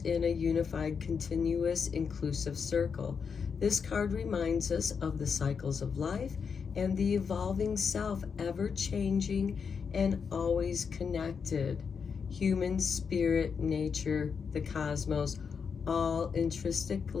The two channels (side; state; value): right; quieter; 6.1 dB